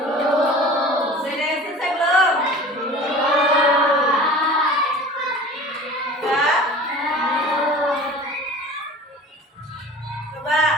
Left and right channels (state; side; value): normal; both; correlation 0.40